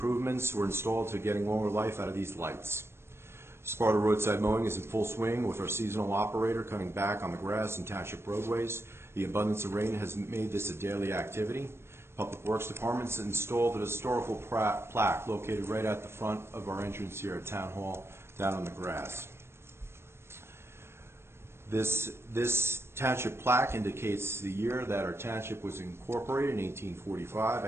were installed to getting longer life out of these lights. Sparta roadside mowing is in full swing with our seasonal operator cutting back on the grass and township roadways. The abundance of rain has made this a daily activity. Public Works Department has installed a historical plaque located right at the front of our entrance here at Town Hall, down on the grass. This township plaque indicates the year that our township was incorporated in 1845. I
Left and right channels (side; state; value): left; late; 0.12 ms